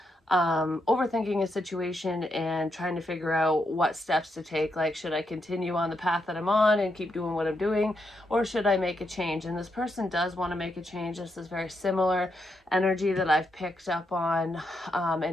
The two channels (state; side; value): normal; both; correlation 0.81